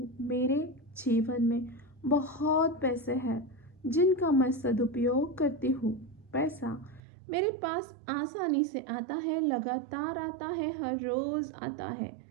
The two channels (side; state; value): left; drops out; at 7.0 s